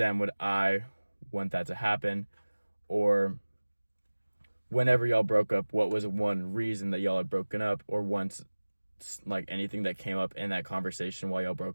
would I want that to happen? Or whenever y'all broke up, what was one reason that y'all had broken up, or once, like, anything that came up in that conversation while y'all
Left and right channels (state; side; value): inverted; both; correlation -1.00